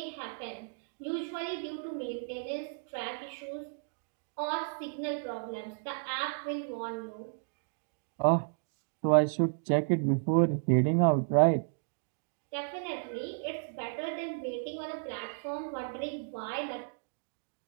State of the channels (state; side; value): silent; left; digital silence